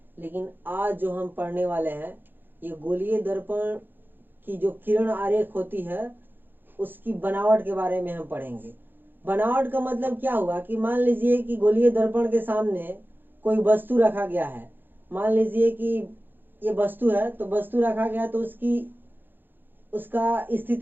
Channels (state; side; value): late; left; 0.095 ms